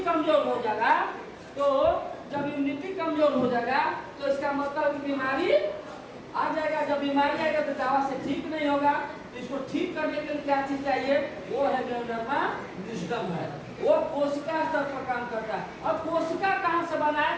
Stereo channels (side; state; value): both; identical; correlation 1.00